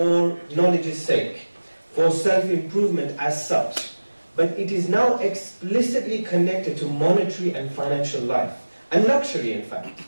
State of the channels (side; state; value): both; inverted; correlation -1.00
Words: knowledge's sake, for self-improvement as such, but it is now explicitly connected to monetary and financial life, and luxury in fact.